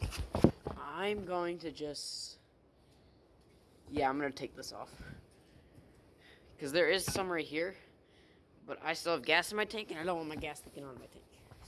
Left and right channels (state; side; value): identical; both; correlation 1.00